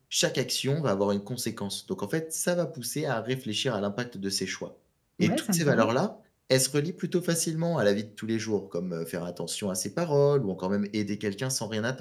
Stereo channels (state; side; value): identical; both; correlation 1.00